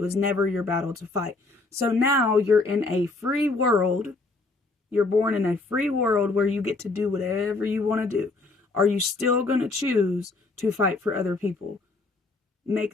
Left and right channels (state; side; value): quieter; right; 3.4 dB